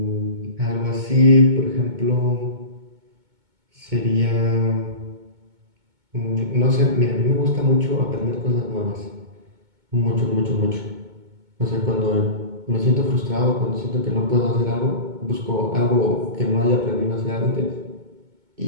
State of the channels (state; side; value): late; left; 2.2 ms